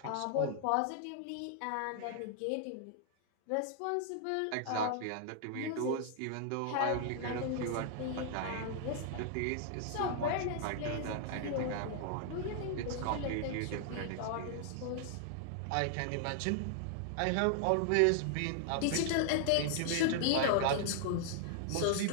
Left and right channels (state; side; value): different; both; correlation 0.00